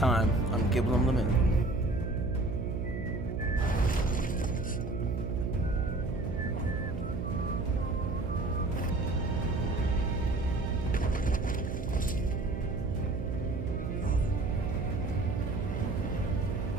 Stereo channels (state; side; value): noise; right; hum, 4 dB below the sound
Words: on Gibble Unlimited.